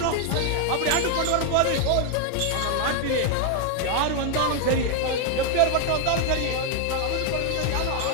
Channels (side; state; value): both; different; correlation 0.00